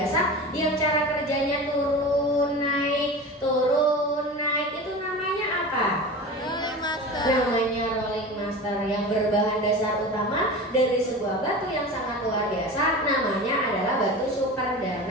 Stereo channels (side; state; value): both; normal; correlation 0.31